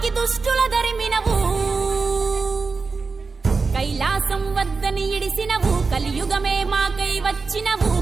దుష్టుల దరిమినవు. కైలాసం వద్దని ఇడిసినవు, కలియుగమే మాకై వచ్చినవు,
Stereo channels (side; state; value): left; quieter; 4.5 dB